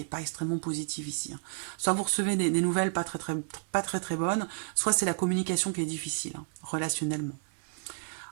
n'est pas extrêmement positif ici. Soit vous recevez des nouvelles pas très bonnes, soit c'est la communication qui est difficile, relationnellement.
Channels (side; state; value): left; silent; digital silence